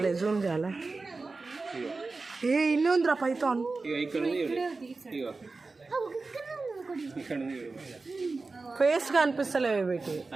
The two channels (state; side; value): quieter; left; 3.8 dB